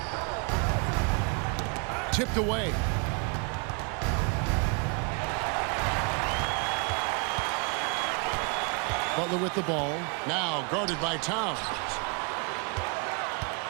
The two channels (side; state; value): left; quieter; 34.4 dB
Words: Tipped away. Butler with the ball. Now guarded by Towns.